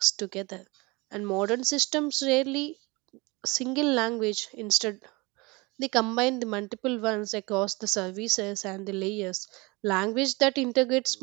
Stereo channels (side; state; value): left; quieter; 25.4 dB